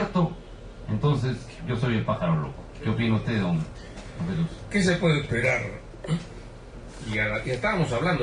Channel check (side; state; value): both; identical; correlation 1.00